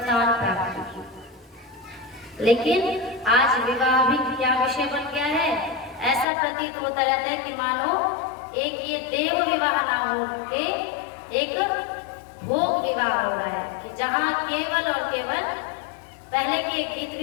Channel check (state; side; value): drops out; right; at 6.2 s